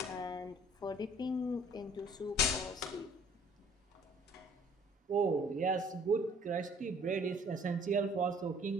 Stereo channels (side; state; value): both; normal; correlation 0.56